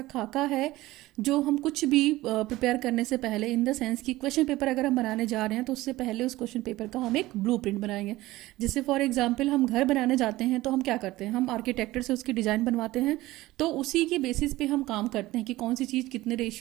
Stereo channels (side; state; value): left; quieter; 17.8 dB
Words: खाका है जो हम कुछ भी प्रिपेयर करने से पहले, इन द सेंस कि क्वेश्चन पेपर अगर हम बनाने जा रहे हैं तो उससे पहले उस क्वेश्चन पेपर का हम एक ब्लूप्रिंट बनाएंगे. जैसे फॉर एग्जांपल हम घर बनाने जाते हैं तो हम क्या करते हैं, हम आर्किटेक्टर से उसकी डिज़ाइन बनवाते हैं. तो उसी के बेसिस पे हम काम करते हैं कि कौन सी चीज़ कितने